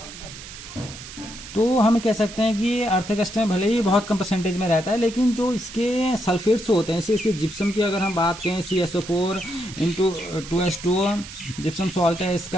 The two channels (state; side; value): noise; right; hiss, 14 dB below the sound